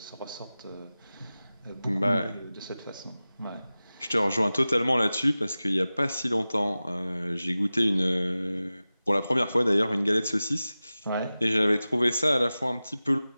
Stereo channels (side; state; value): both; inverted; correlation -0.96